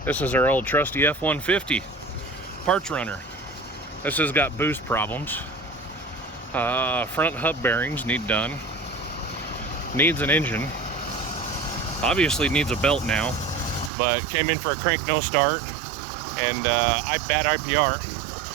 This is our old trusty F-150 parts runner. This has got boost problems. Front hub bearings need done. Needs an engine. Obviously needs a belt now, but came in for a crank no start and bad IPR.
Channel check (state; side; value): drops out; left; at 13.9 s